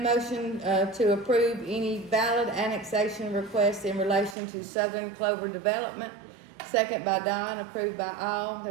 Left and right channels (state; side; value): drops out; left; at 4.4 s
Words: to approve any valid annexation requests in relation to Southern Clover Development. Second by Don, approved by all.